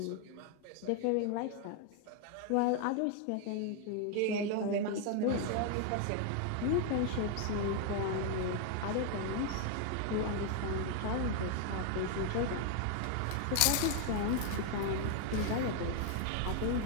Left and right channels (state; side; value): different; both; correlation 0.00